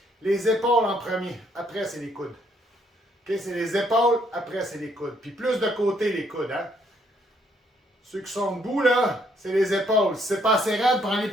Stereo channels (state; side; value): normal; both; correlation 0.70